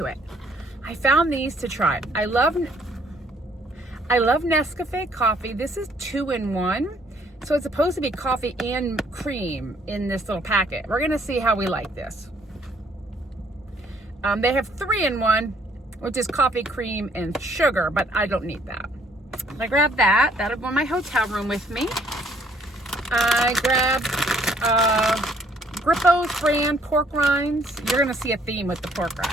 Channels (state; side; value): normal; both; correlation 0.63